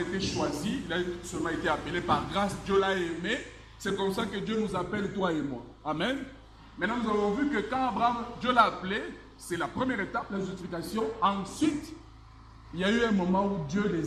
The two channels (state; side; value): identical; both; correlation 1.00